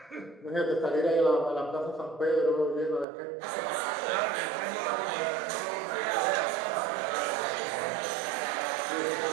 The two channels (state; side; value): drops out; left; at 3.1 s